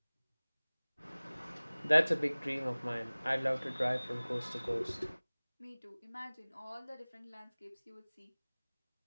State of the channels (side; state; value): both; inverted; correlation -1.00